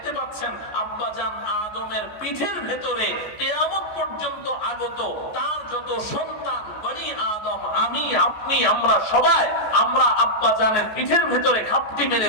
পাচ্ছেন আব্বাজান আদমের পিঠের ভেতরে কিয়ামত পর্যন্ত আগত তার যত সন্তান বনি আদম, আমি আপনি আমরা সবাই, আমরা আব্বাজানের পিঠের ভেতরে ঘাপটি মেরে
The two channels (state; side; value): late; right; 14 ms